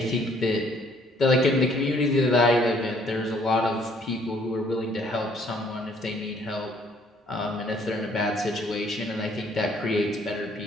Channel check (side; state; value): both; normal; correlation 0.62